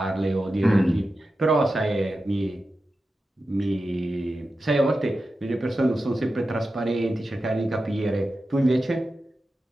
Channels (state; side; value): normal; both; correlation 0.92